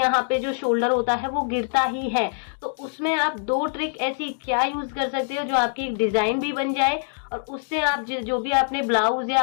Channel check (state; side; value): silent; right; digital silence